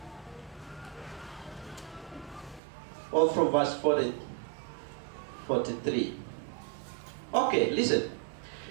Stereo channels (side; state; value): left; drops out; at 2.6 s